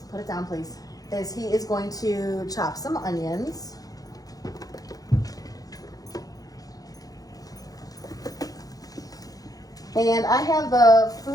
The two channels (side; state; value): right; late; 0.18 ms